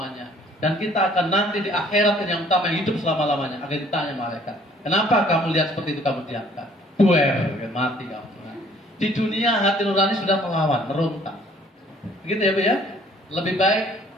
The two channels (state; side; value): normal; both; correlation 0.58